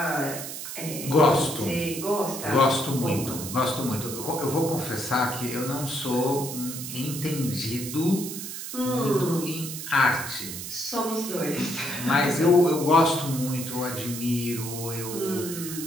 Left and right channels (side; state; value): right; noise; hiss, 8 dB below the sound